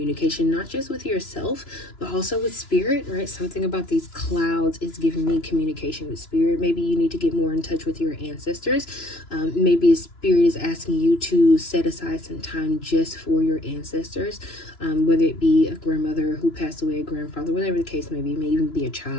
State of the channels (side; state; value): right; late; 2.9 ms